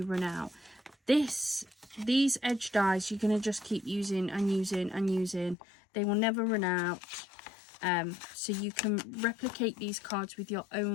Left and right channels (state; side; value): drops out; right; at 5.6 s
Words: run out. These edge dies you're going to just keep using and using and using. They will never run out. So you can replicate these cards with your